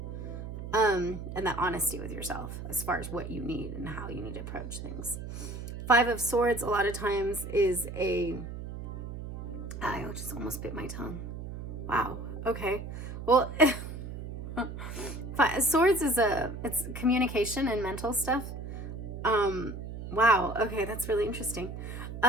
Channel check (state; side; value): noise; right; hum, 8 dB below the sound